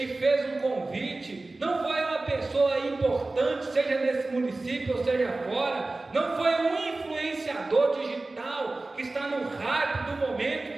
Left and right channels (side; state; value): left; quieter; 3.1 dB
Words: fez um convite, não foi uma pessoa importante, seja nesse município ou seja fora, não foi um influenciador digital que está no hype do